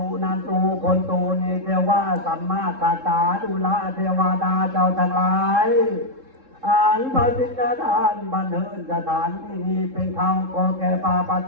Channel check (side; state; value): left; late; 3.7 ms